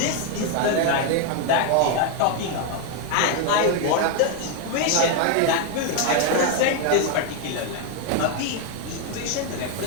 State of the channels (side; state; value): both; different; correlation 0.01